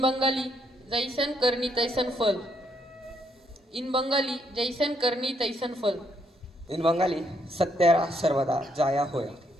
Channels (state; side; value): normal; both; correlation 0.73